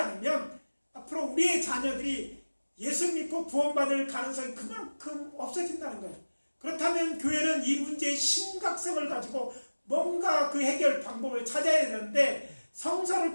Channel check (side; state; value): both; inverted; correlation -1.00